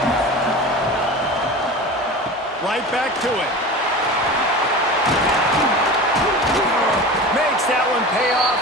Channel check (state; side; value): normal; both; correlation 0.32